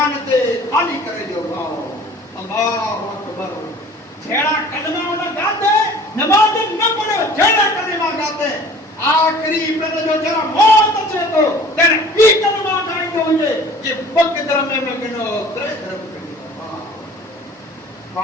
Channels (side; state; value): both; normal; correlation 0.47